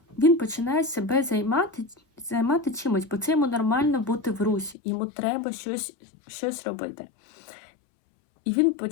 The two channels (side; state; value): right; drops out; at 4.8 s